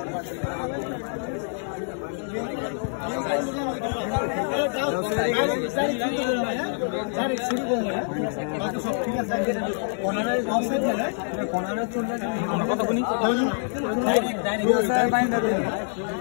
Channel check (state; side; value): silent; right; 61 dB below the other